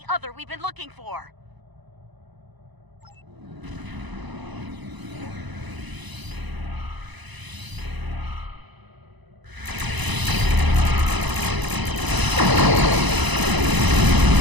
other we've been looking for.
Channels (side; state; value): left; late; 1.0 ms